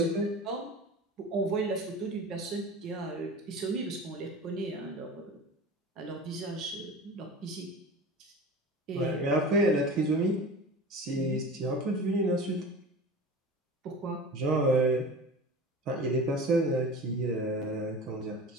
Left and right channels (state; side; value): normal; both; correlation 0.34